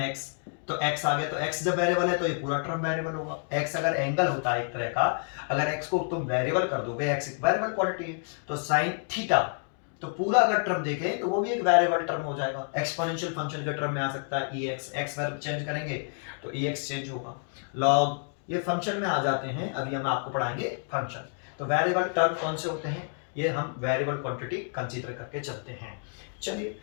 x, तो x आ गया, तो x जब वेरिएबल है तो ये पूरा टर्म वेरिएबल होगा। x अगर एंगल होता है एक तरह का, अगर x को तुम वेरिएबल कर दोगे, x एक वेरिएबल क्वांटिटी है, तो साइन थीटा, तो पूरा अगर टर्म देखें तो वो भी एक वेरिएबल टर्म हो जाएगा। एक्सपोनेंशियल फंक्शन के टर्म में आ सकता है ex, x वेरिएबल चेंज करेंगे तो ex चेंज होगा। लॉग, ये फंक्शन में आ जाते हैं, अभी हम आपको पढ़ाएंगे फंक्शन। तो वेरिएबल टर्म कौन से होते हैं, ये हम वेरिएबल क्वांटिटी कंसीडर करके चलते हैं। चलिए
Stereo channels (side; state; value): right; silent; 58 dB below the other